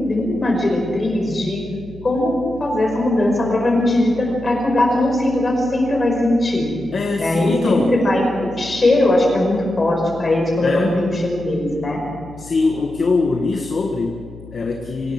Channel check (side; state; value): left; noise; hum, 18 dB below the sound